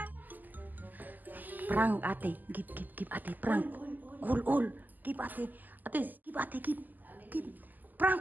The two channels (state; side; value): late; left; 0.085 ms